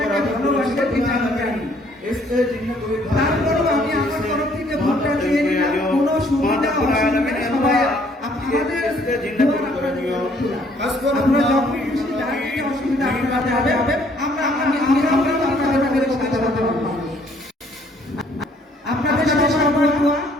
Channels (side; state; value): both; normal; correlation 0.63